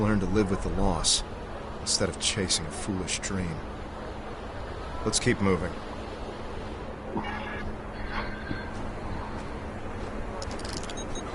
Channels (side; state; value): both; identical; correlation 1.00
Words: to live with the loss, instead of chasing a foolish dream. Let's keep moving.